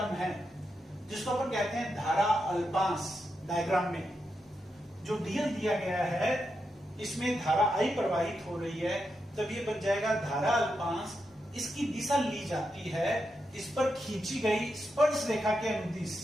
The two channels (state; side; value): normal; both; correlation 0.86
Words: है जिसको अपन कहते हैं धारा अल्पांश। डायग्राम में जो डीएल दिया गया है इसमें धारा आई प्रवाहित हो रही है, तब ये बन जाएगा धारा अल्पांश। इसकी दिशा ली जाती है, इस पर खींची गई स्पर्श रेखा के अनुदिश